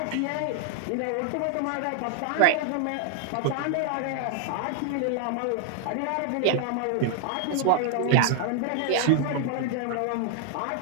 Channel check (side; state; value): both; different; correlation 0.00